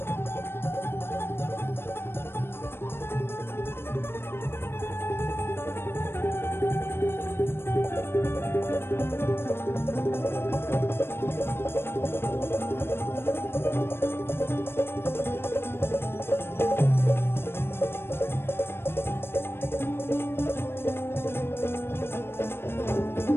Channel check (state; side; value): late; right; 0.11 ms